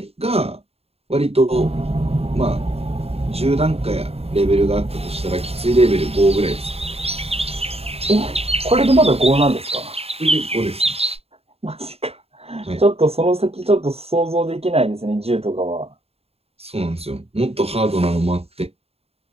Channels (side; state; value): left; late; 0.29 ms